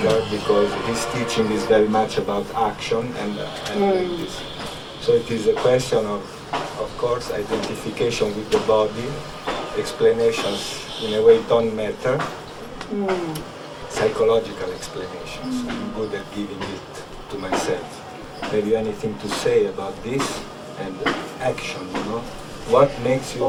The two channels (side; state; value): both; identical; correlation 1.00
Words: because his teaching is very much about action and like this. So it is a question of course, identification with the body. Explanations in a way don't matter. Psychological explanations. I'm good at giving it to myself. Have you anything to say about this and action, What makes you...